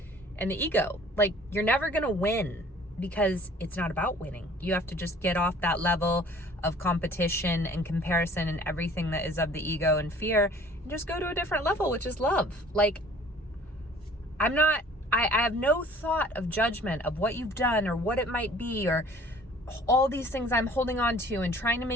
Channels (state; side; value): normal; both; correlation 0.51